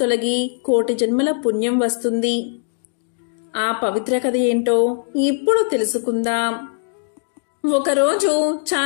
కోటి జన్మల పుణ్యం వస్తుంది. ఆ పవిత్ర కథ ఏంటో ఇప్పుడు తెలుసుకుందాం. ఒకరోజు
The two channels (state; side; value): silent; right; 66 dB below the other